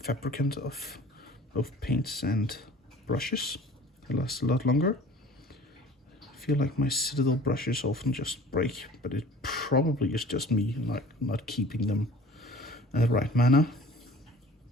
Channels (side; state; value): both; normal; correlation 0.46